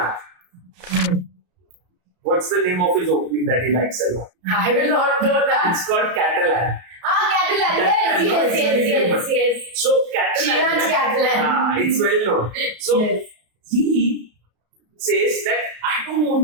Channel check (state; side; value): late; left; 33 ms